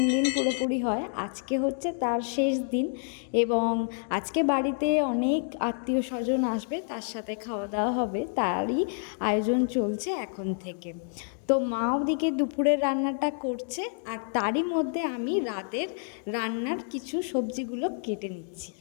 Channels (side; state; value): right; silent; 59 dB below the other